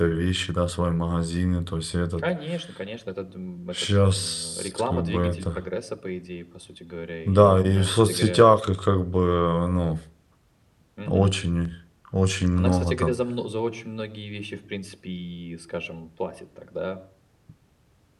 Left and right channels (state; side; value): identical; both; correlation 1.00